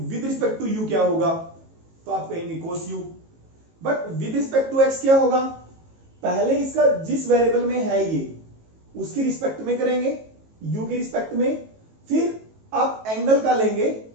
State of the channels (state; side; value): late; left; 18 ms